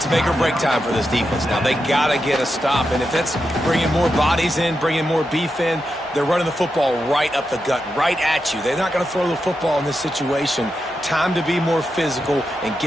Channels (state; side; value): normal; both; correlation 0.87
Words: make or break time for this defense now. They got to get a stop, and if that's bringing more bodies in, bringing more beef in, they're running the football right up the gut, right at you. They're not going to throw the football in this situation. Time to be more physical and